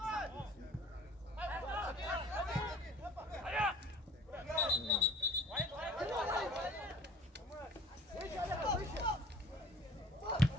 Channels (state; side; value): normal; both; correlation 0.48